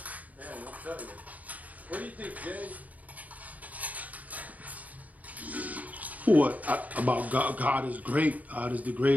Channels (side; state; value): left; late; 0.074 ms